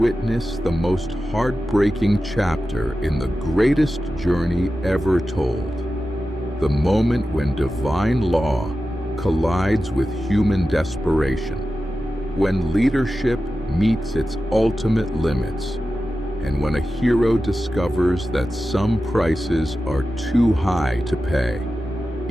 the most heartbreaking chapter in the greatest journey ever told. The moment when divine law collides with human desperation, when leadership meets its ultimate limits, and when a hero discovers that some prices are too high to pay,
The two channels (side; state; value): both; normal; correlation 0.93